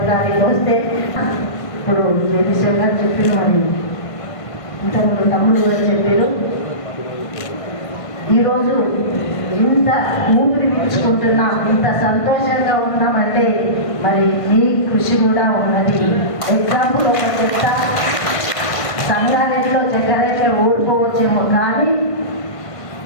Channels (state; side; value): late; right; 1.5 ms